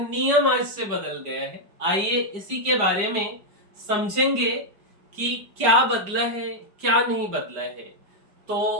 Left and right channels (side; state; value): left; late; 5.0 ms